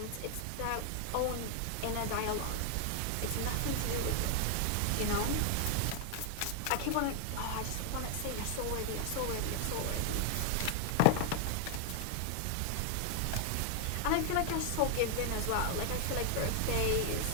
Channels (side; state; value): both; different; correlation 0.00